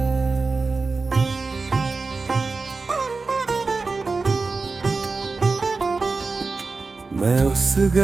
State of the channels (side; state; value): left; quieter; 4.0 dB